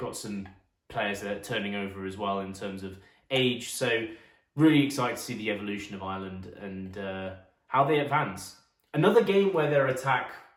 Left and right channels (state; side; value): identical; both; correlation 1.00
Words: some players that are turning over as well in terms of age. So really excited to see the evolution of Ireland and how they advance. Another game where their attack